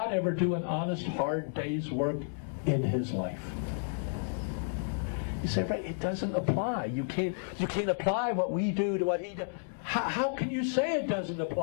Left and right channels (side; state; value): right; silent; 57 dB below the other